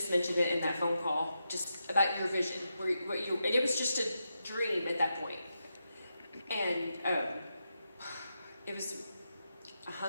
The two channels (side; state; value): both; inverted; correlation -0.86